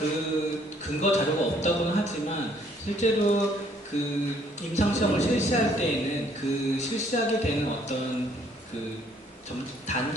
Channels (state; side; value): normal; both; correlation 0.63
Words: 근거 자료가 없다고는 하지만 실제로 임상시험을 실시할 때에는 실시하게 되는 어떤